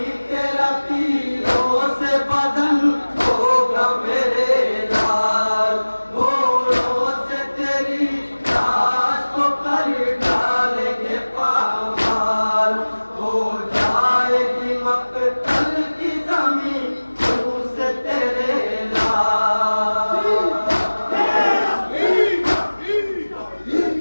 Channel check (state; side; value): inverted; both; correlation -1.00